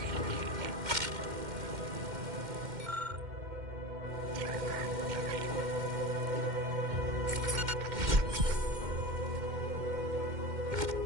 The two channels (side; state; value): left; late; 2.1 ms